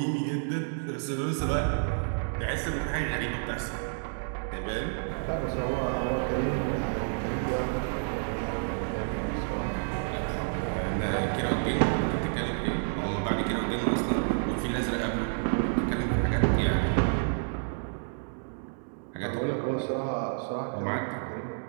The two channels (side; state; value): left; silent; digital silence